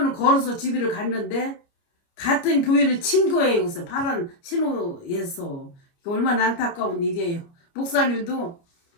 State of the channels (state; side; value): late; right; 29 ms